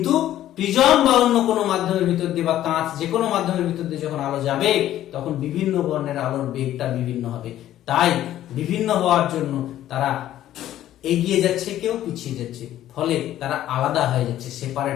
প্রিজম বা অন্য কোনো মাধ্যমের ভিতর দিয়ে বা কাঁচ যে কোনো মাধ্যমের ভিতর দিয়ে যখন আলো যাবে তখন বিভিন্ন বর্ণের আলোর বেগটা বিভিন্ন হবে। তাই বিভিন্ন হওয়ার জন্য তারা এগিয়ে যাচ্ছে, কেউ পিছিয়ে যাচ্ছে, ফলে তারা আলাদা হয়ে যাচ্ছে,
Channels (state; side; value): quieter; right; 12.8 dB